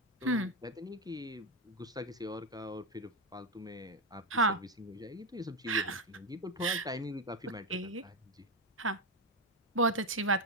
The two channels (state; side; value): normal; both; correlation 0.10